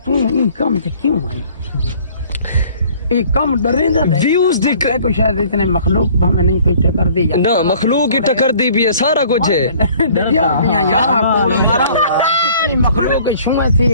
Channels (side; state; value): both; inverted; correlation -0.54